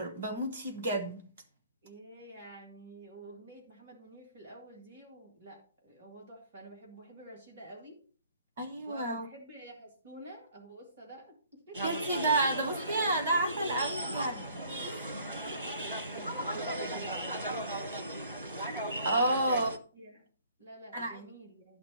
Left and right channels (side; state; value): both; inverted; correlation -0.58